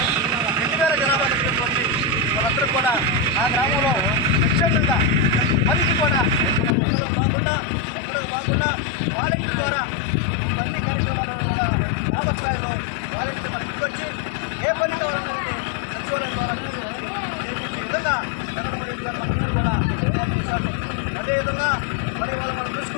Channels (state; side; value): drops out; right; at 6.8 s